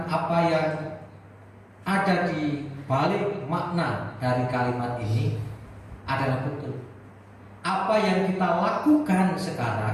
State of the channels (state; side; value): identical; both; correlation 1.00